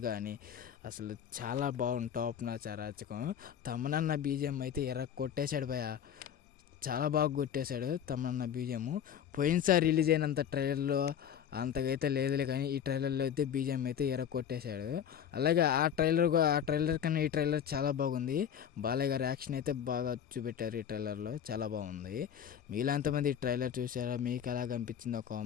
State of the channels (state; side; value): quieter; right; 8.9 dB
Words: కానీ అసలు చాలా బాగుంది. టాప్ నాచ్ అరాచకం. తమన్నా బీజిఎం అయితే కొట్టేశాడు భయ్య. చాలా బాగా కొట్టేశాడు తమన్నా బీజిఎం. పోయినసారి రిలీజ్ అయినంత ట్రైలర్లో అంతకైతే లేదులే, కానీ ఈ ట్రైలర్లో అయితే బీజిఎం అయితే కొట్టేశాడు. అలాగే ఆ ట్రైలర్ కన్నా ఈ ట్రైలర్ చాలా బాగుంది. బాలయ్య గారి యాక్షన్ అయితే బాగా చూపెట్టారు ఈ ట్రైలర్లో, చాలా బాగుంది. మీలో ఎంతమంది ఈ ట్రైలర్ చూసారా? మీకు ఎలా కనిపించిందో